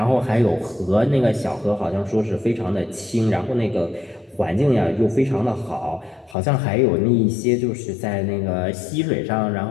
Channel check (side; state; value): right; drops out; at 6.4 s